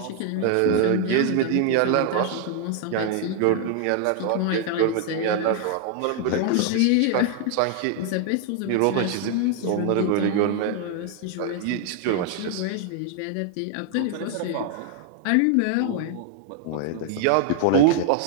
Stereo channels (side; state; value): both; different; correlation 0.00